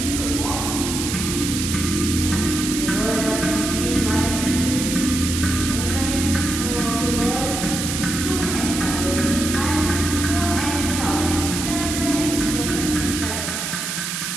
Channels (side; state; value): right; noise; hiss, 3 dB below the sound